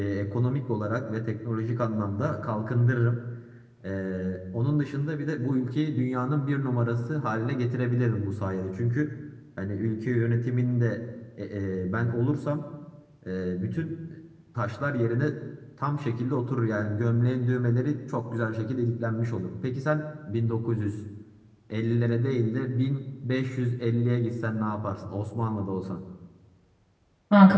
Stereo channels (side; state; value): both; identical; correlation 1.00